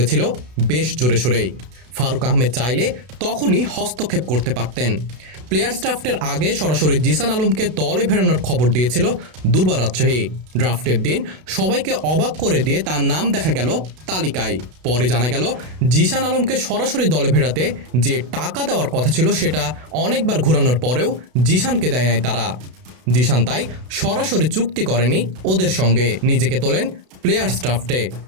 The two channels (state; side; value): late; left; 32 ms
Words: বেশ জোরে সোরেই। ফারুক আহমেদ চাইলে তখনই হস্তক্ষেপ করতে পারতেন। প্লেয়ার্স ড্রাফটের আগে সরাসরি জিসান আলমকে দলে ফেরানোর খবর দিয়েছিল দুর্বার রাজশাহী। ড্রাফটের দিন সবাইকে অবাক করে দিয়ে তার নাম দেখা গেল তালিকায়। পরে জানা গেল জিসান আলমকে সরাসরি দলে ফেরাতে যে টাকা দেওয়ার কথা ছিল সেটা অনেকবার ঘোরানোর পরেও জিসানকে দেয় নাই তারা। জিসান তাই সরাসরি চুক্তি করেনি ওদের সঙ্গে, নিজেকে তোলেন প্লেয়ার্স ড্রাফটে।